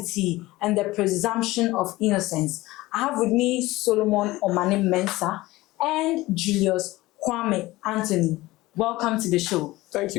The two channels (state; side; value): quieter; right; 18.8 dB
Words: and the presumption of innocence. I have with me Solomon Omane Mensah and Julius Kwame Anthony. Welcome to the show. Thank